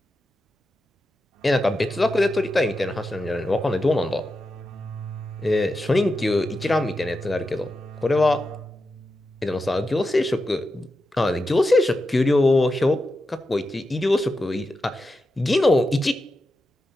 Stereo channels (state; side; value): normal; both; correlation 0.89